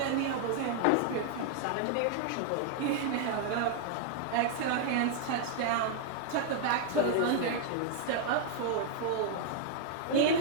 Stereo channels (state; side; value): different; both; correlation -0.01